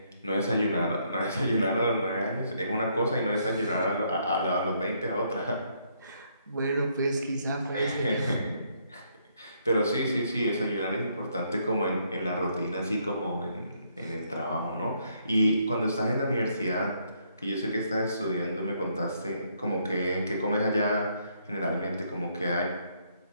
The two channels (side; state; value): both; inverted; correlation -0.71